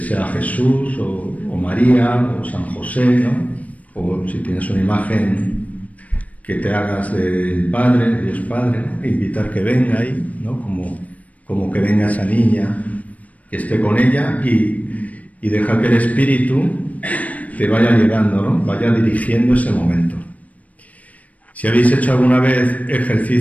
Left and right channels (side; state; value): right; late; 0.070 ms